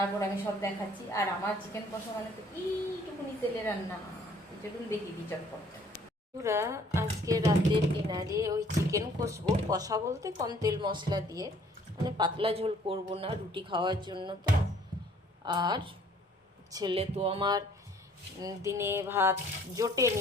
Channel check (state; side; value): normal; both; correlation 0.58